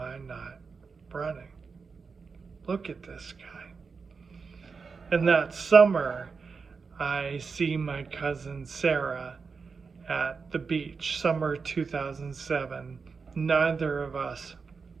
not running? Look at this guy. And that summer, I see my cousin Sarah at the beach, summer 2007. Neither of us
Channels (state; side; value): quieter; left; 5.1 dB